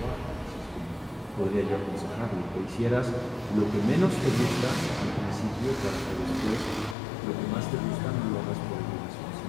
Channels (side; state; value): right; drops out; at 7.0 s